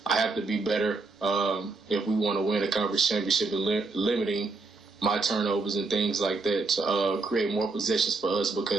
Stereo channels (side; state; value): left; quieter; 3.7 dB